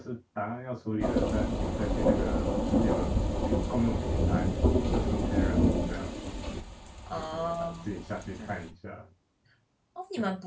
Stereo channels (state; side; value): identical; both; correlation 1.00